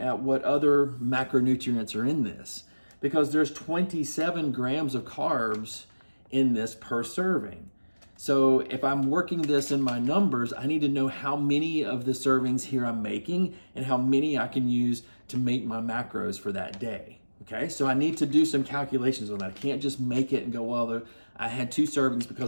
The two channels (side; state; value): both; inverted; correlation -1.00